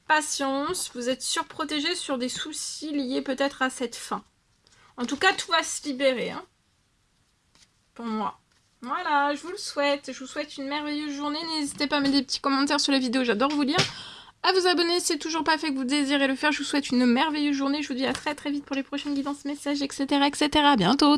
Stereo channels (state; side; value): identical; both; correlation 1.00